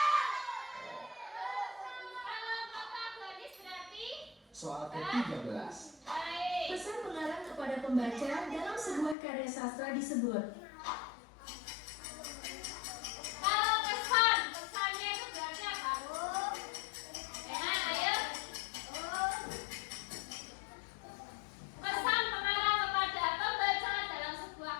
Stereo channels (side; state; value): right; drops out; at 9.2 s